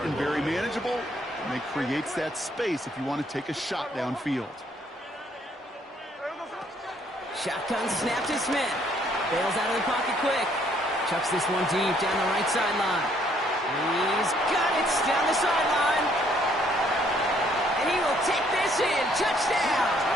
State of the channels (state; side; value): normal; both; correlation 0.66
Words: very manageable, and it creates that space if you want to take a shot downfield. Shotgun snap to Smith. Bails out of the pocket quick. Chucks this one deep down the right sideline. He's got it down the sideline. And he will take this in. Touchdown!